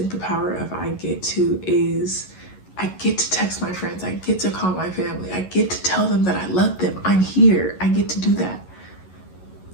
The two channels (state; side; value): late; right; 11 ms